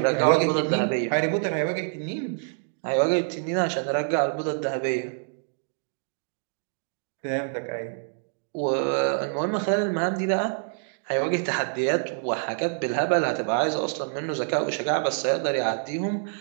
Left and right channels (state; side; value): silent; left; digital silence